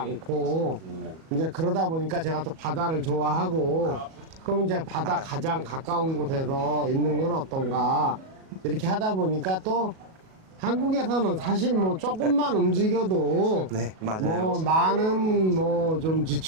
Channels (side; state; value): left; late; 37 ms